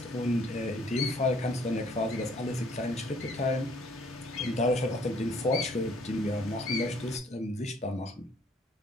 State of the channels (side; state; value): both; normal; correlation 0.61